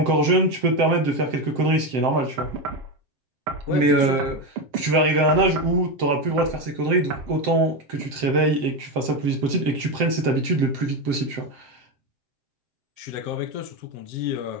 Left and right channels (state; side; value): late; left; 7.7 ms